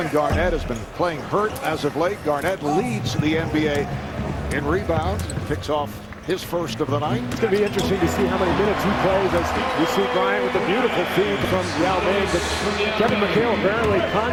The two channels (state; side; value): identical; both; correlation 1.00